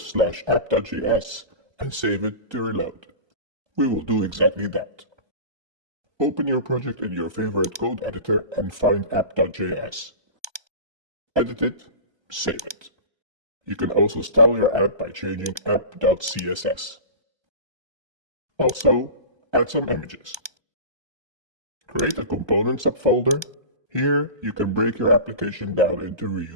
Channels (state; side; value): late; left; 1.3 ms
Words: and save it to reload. We will do exactly that. Open your project in your favorite code editor and find app.js. Edit it, save it. You can also style your app by changing app.css. Also, add some images. Create a component subfolder. Here, you can break your application down into